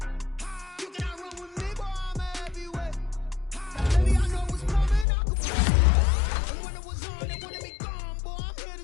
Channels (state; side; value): drops out; right; at 5.1 s